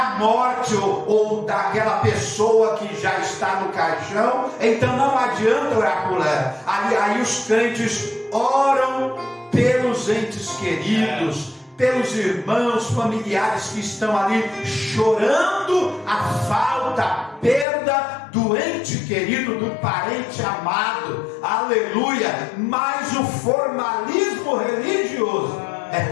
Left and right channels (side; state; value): right; drops out; at 17.7 s